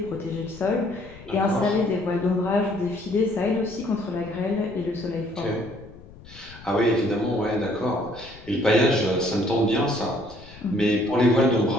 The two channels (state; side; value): noise; left; rumble, 20 dB below the sound